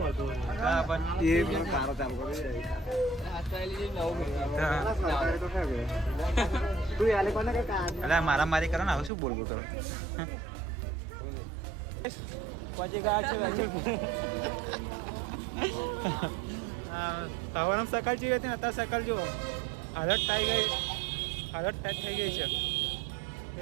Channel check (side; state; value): left; drops out; at 9.1 s